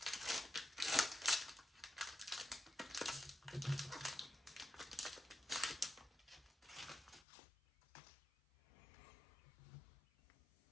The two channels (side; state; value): right; drops out; at 7.2 s